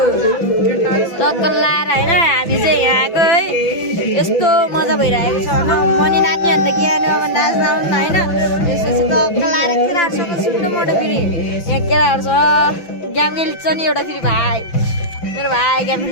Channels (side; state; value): right; late; 6.0 ms